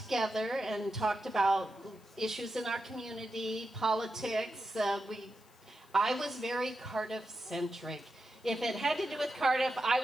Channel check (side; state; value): left; noise; hiss, 29 dB below the sound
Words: and talked about issues in our community, politics. I was very Cardiff-centric. If it had to do with Cardiff, I